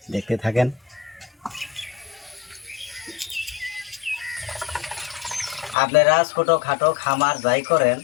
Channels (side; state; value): right; drops out; at 5.8 s